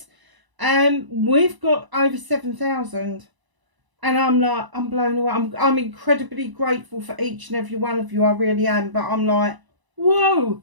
We've got over 7,000. And I'm blown away. I'm incredibly grateful for each and every one of you. I really am. But I'm like, whoa,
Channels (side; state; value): left; late; 1.0 ms